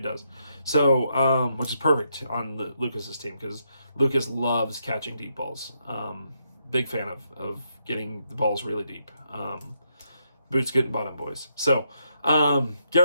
does. So, which is perfect on Lucas's team because Lucas loves catching deep balls. Big fan of getting the balls really deep. Boots getting bottom, boys. So,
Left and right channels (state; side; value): inverted; both; correlation -0.78